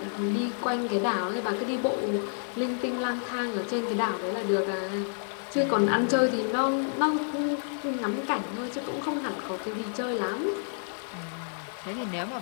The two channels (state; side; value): silent; right; digital silence